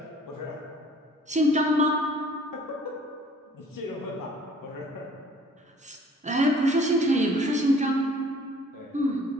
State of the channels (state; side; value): normal; both; correlation 0.54